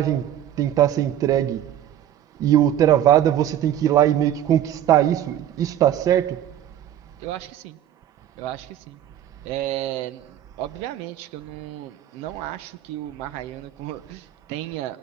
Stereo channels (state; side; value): quieter; left; 11.2 dB